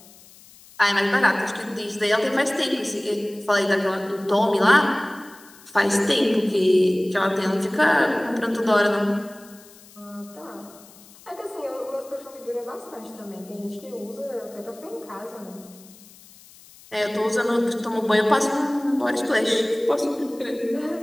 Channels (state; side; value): noise; left; hiss, 23 dB below the sound